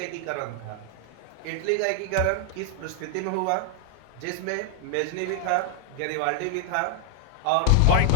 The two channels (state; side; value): different; both; correlation 0.00